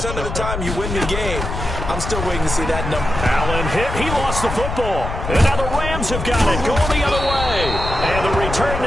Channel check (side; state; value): left; noise; rumble, 5 dB below the sound